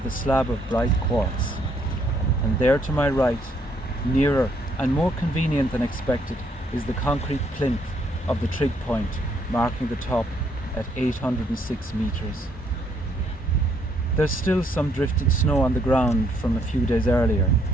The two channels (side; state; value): both; normal; correlation 0.70